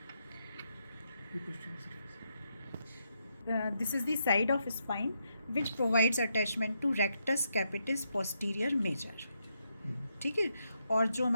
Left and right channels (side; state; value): both; inverted; correlation -0.81